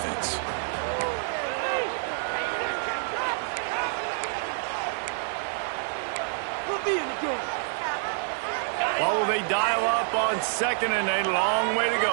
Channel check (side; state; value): left; silent; digital silence